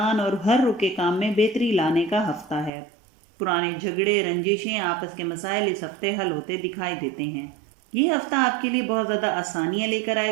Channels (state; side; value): drops out; left; at 2.7 s